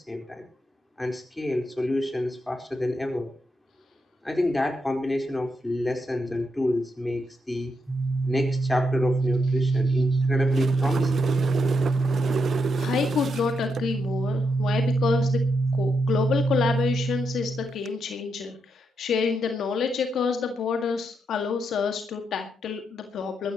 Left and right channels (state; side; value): normal; both; correlation 0.81